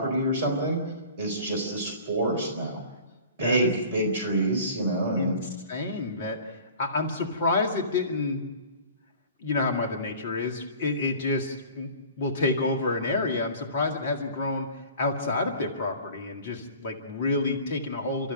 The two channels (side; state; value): both; inverted; correlation -0.44